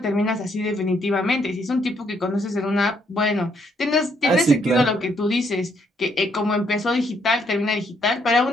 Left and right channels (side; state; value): both; normal; correlation 0.72